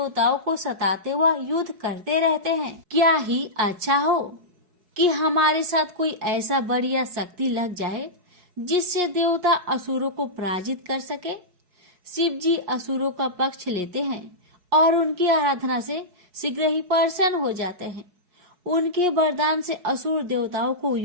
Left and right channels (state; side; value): late; left; 4.7 ms